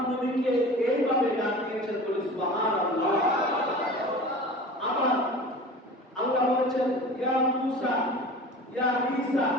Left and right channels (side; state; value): both; normal; correlation 0.38